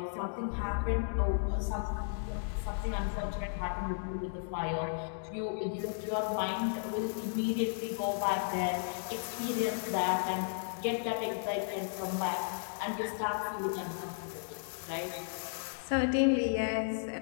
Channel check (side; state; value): right; silent; digital silence